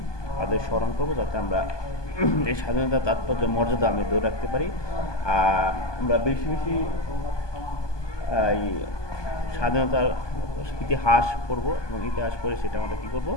তাদের স্মরণ করবো যাতে আমরা এই স্বাধীনতার তাৎপর্য মর্যাদা আমি ধরে রাখতে পারি। আমরা বেশি বেশি এই স্বাধীনতার ইতিহাস পড়ব এবং ইতিহাস পড়ে সেটা আমরা কী করবো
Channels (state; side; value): late; right; 1.2 ms